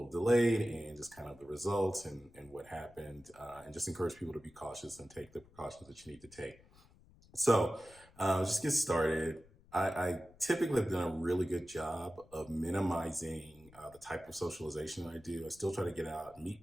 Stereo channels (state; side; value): noise; left; rumble, 25 dB below the sound